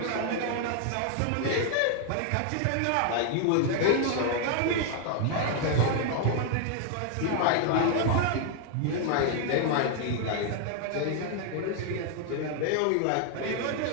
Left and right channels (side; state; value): both; different; correlation 0.00